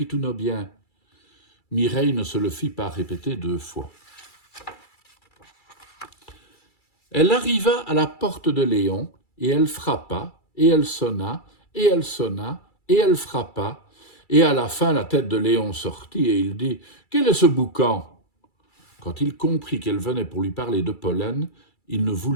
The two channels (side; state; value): right; late; 2.3 ms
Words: tous nos biens. » Mireille ne se le fit pas répéter 2 fois. Elle arriva à la porte de Léon, et elle frappa, et elle sonna, et elle sonna, et elle frappa, et à la fin la tête de Léon sortit, et il dit « Quel est ce boucan ?» Quand il comprit qu'elle venait pour lui parler de pollen, il ne